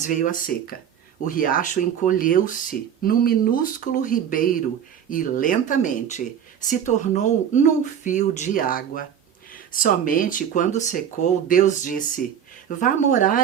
veio a seca. O riacho encolheu-se num minúsculo ribeiro e lentamente se tornou num fio de água. Somente quando secou, Deus disse: vá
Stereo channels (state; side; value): quieter; left; 8.8 dB